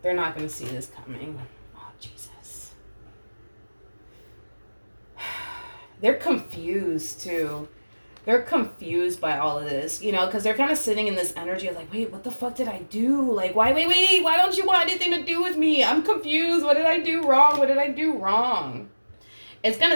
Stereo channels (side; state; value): both; inverted; correlation -1.00